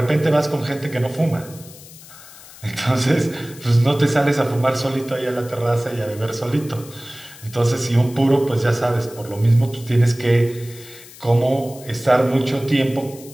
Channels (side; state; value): left; noise; hiss, 19 dB below the sound